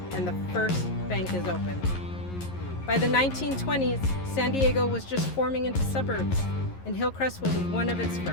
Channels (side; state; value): right; late; 11 ms